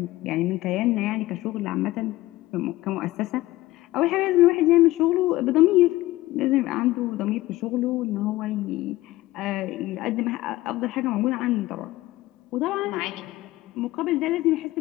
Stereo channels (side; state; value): right; quieter; 17.4 dB